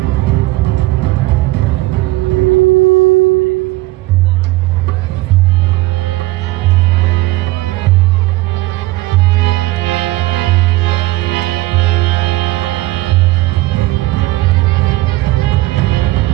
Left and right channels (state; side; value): quieter; left; 19.1 dB